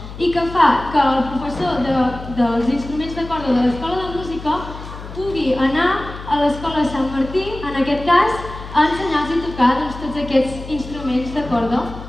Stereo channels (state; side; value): noise; left; hum, 12 dB below the sound